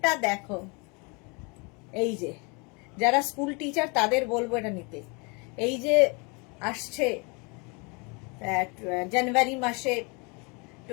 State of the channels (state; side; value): quieter; right; 30.8 dB